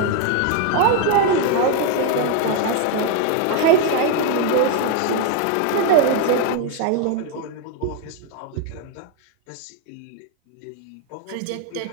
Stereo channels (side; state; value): both; different; correlation 0.01